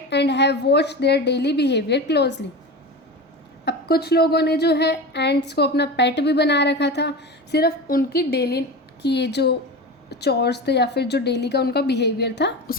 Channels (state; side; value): normal; both; correlation 0.26